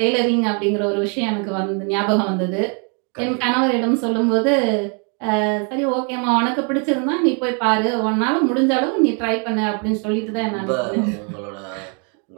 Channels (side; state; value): left; quieter; 38.3 dB